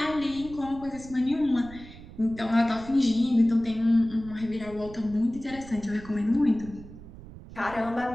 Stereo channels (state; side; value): noise; right; rumble, 16 dB below the sound